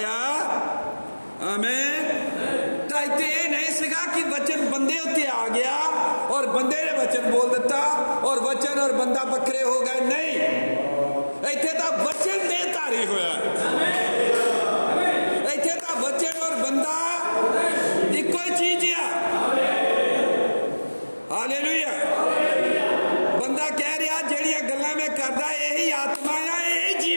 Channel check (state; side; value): inverted; both; correlation -1.00